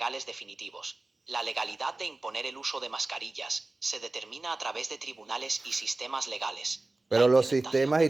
definitivos. La legalidad de imponer el uso de mascarillas se determina a través de tribunales y sistemas legales. La Pero los implementación sistemas y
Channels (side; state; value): left; quieter; 3.1 dB